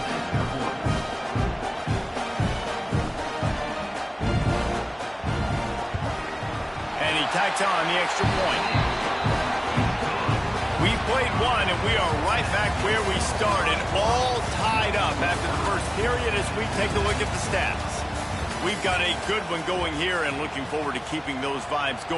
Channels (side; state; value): both; identical; correlation 1.00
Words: Tacks on the extra point. We played one, and we are right back where we started, all tied up after the first period as we take a look at the stats. We've got a good one going here and looking forward to keeping those vibes